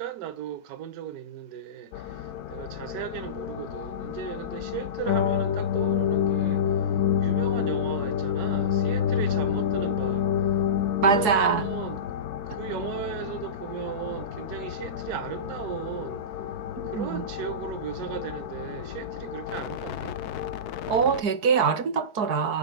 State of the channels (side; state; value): left; late; 4.7 ms